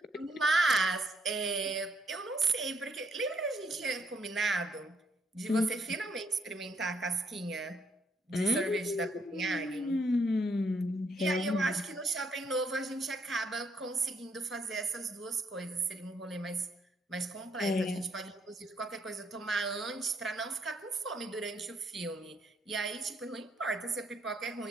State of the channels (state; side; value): normal; both; correlation 0.72